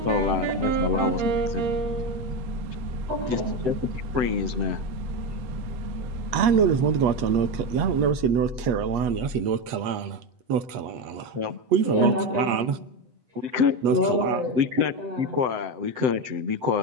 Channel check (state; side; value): late; left; 8.4 ms